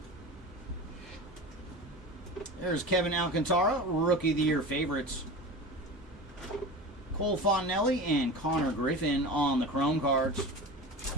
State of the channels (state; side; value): normal; both; correlation 0.31